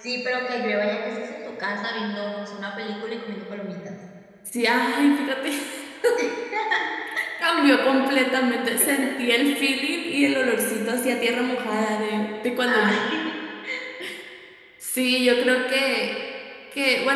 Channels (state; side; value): identical; both; correlation 1.00